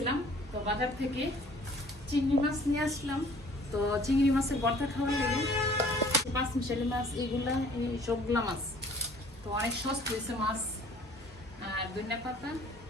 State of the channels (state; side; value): normal; both; correlation 0.53